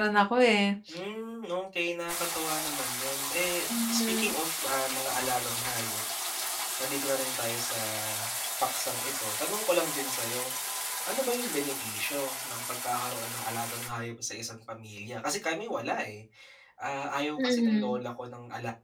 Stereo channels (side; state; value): both; identical; correlation 1.00